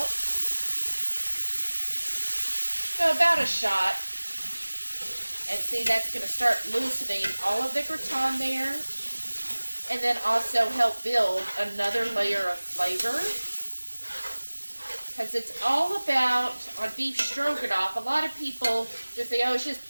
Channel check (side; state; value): both; inverted; correlation -1.00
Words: So about a shot. And see, that's going to start loosening all of the gratin there, and then also help build another layer of flavor. Because it's all about, on beef stroganoff, a lot of people just say, oh, it's just